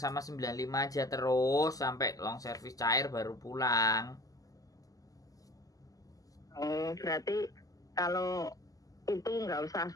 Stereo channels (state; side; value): late; right; 0.17 ms